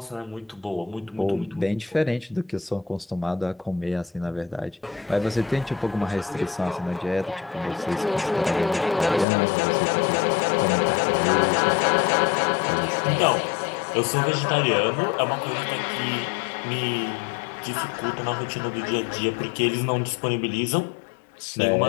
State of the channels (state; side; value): drops out; right; at 9.2 s